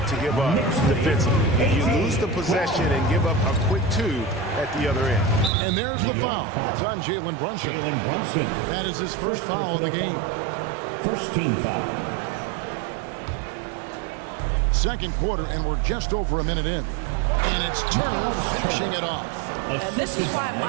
to give up defensively. You lose the possession and give up a quick 2 at the other end. And there's the foul. It's on Jalen Brunson. That is his first foul of the game. First team foul. Second quarter, and we're just over a minute in. And it's Turner finishing it off. And this is why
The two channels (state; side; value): drops out; left; at 5.5 s